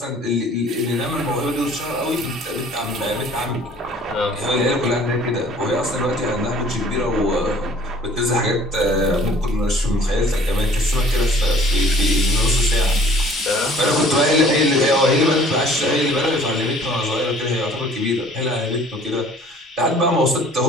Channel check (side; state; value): both; normal; correlation 0.53